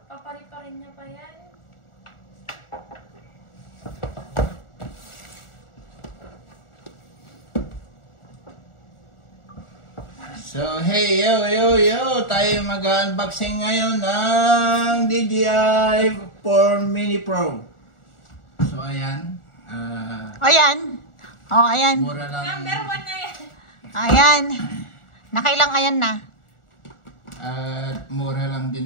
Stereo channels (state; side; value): late; right; 1.4 ms